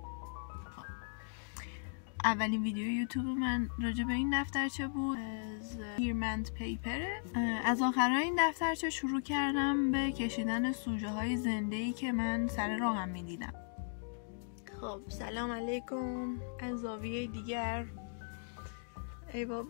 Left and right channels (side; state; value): right; silent; digital silence